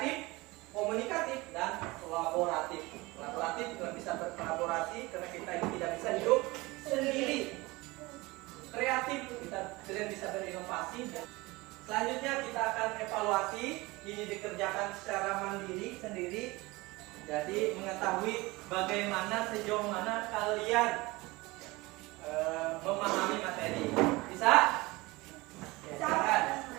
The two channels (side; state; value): left; quieter; 22.3 dB